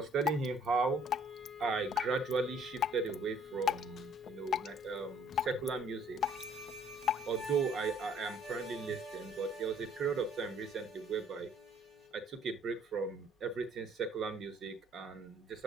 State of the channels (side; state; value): both; normal; correlation 0.59